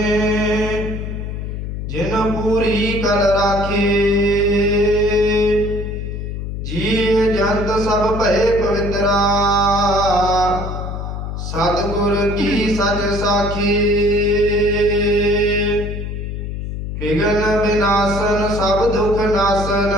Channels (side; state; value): left; noise; hum, 5 dB below the sound